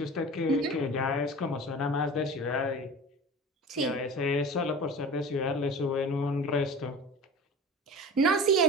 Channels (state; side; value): normal; both; correlation 0.37